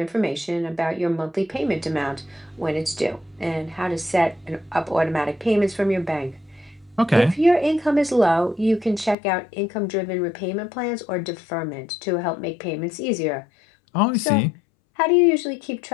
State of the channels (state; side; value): drops out; right; at 9.2 s